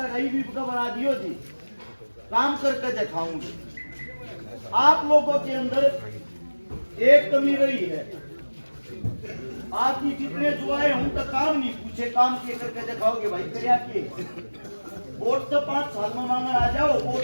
बना दियो जी, काम करके दिखाऊंगे। आप लोगों के अंदर एक कमी रही है, आपकी कितने जो आए हूं तो काम नहीं पूछे, काम के करके दिखाओगे भाई क्या किए। वोट तो 5 साल में मांगने आ जाओ,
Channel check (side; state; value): both; inverted; correlation -1.00